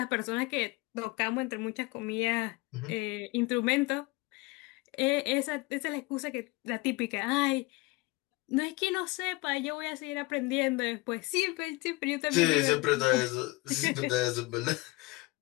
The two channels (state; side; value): quieter; right; 23.5 dB